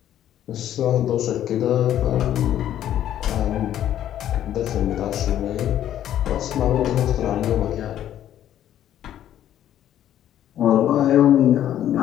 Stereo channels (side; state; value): right; quieter; 11.4 dB